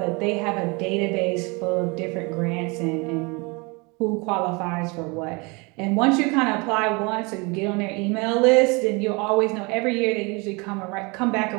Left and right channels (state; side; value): quieter; left; 28.5 dB